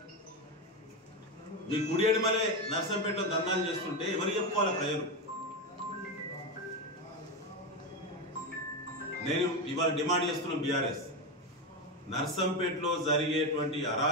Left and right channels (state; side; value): normal; both; correlation 0.13